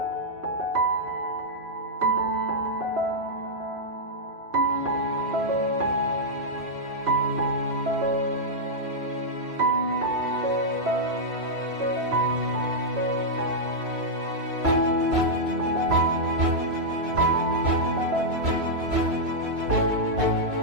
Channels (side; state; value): left; late; 2.9 ms